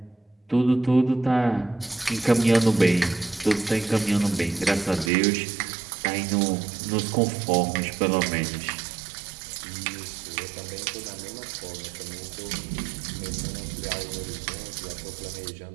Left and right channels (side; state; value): left; drops out; at 5.1 s